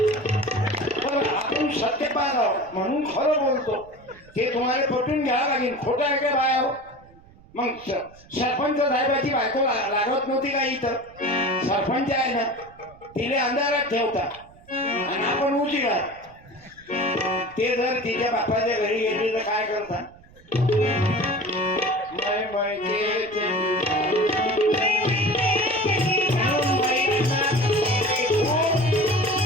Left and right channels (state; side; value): noise; right; rumble, 25 dB below the sound